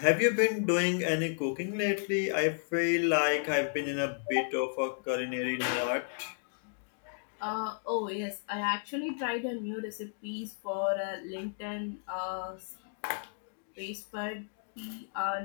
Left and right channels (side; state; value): right; silent; digital silence